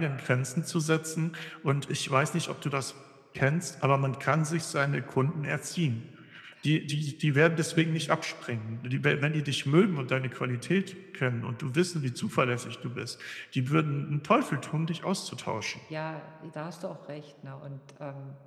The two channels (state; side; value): identical; both; correlation 1.00